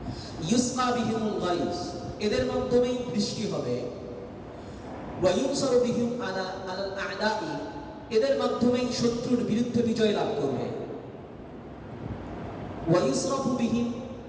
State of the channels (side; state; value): both; identical; correlation 1.00